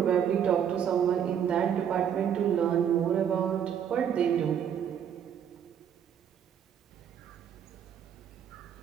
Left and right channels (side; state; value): left; quieter; 8.7 dB